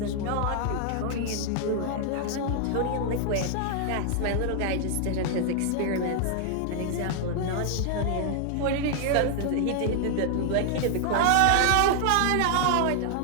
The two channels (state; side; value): different; both; correlation 0.00